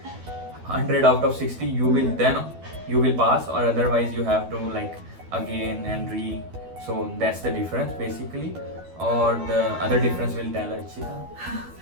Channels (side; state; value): left; late; 12 ms